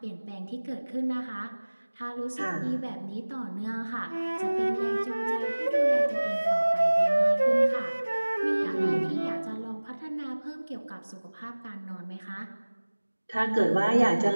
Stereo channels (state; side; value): inverted; both; correlation -1.00